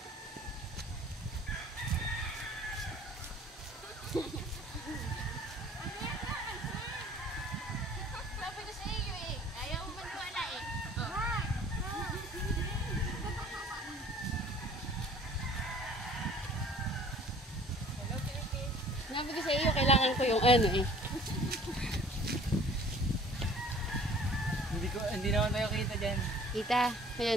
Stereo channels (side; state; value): both; normal; correlation 0.51